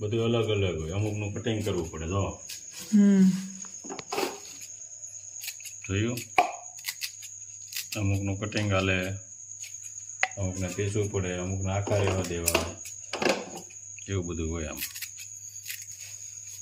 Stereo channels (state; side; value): identical; both; correlation 1.00